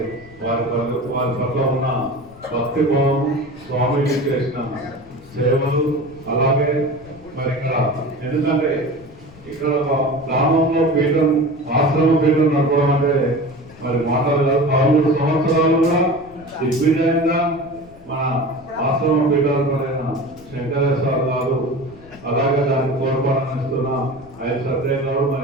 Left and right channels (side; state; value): left; noise; rumble, 22 dB below the sound